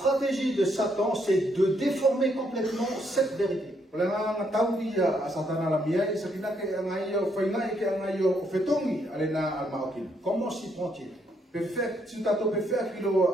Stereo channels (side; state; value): both; normal; correlation 0.74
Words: de Satan, c'est de déformer complètement cette vérité. Comment s'y prend-il?